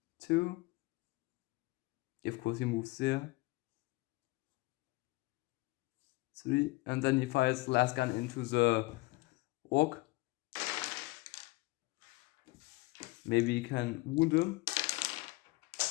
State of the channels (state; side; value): quieter; right; 22.5 dB